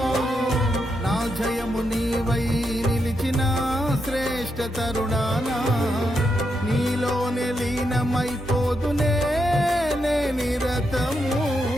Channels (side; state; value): both; normal; correlation 0.82